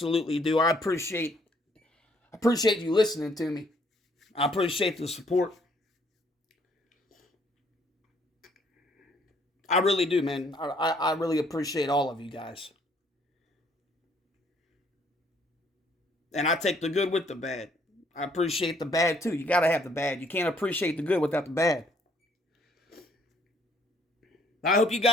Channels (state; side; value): normal; both; correlation 0.65